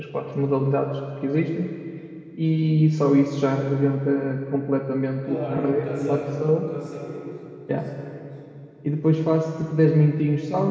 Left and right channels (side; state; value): both; identical; correlation 1.00